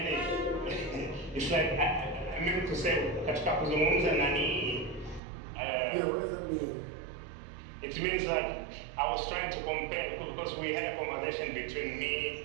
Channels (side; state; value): left; drops out; at 5.2 s